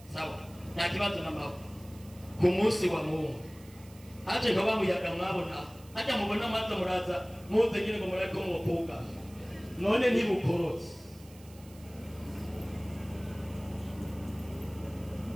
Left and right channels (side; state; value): right; noise; hiss, 23 dB below the sound